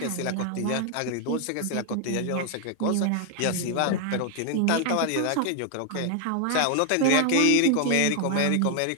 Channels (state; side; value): different; both; correlation 0.00